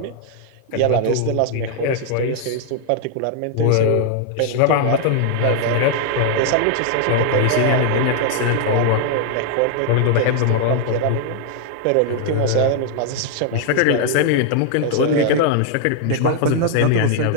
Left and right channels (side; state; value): both; different; correlation 0.00